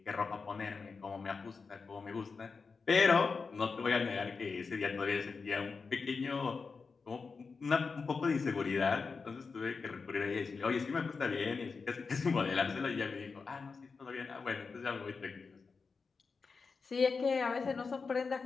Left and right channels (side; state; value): right; quieter; 4.8 dB